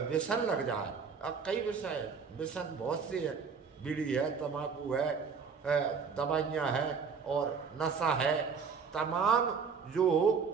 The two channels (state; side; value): quieter; left; 5.7 dB